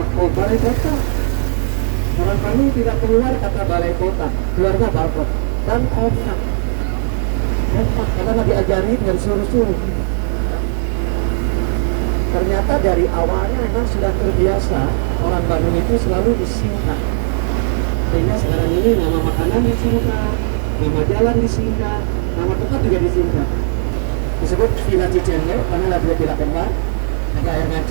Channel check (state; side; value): silent; left; digital silence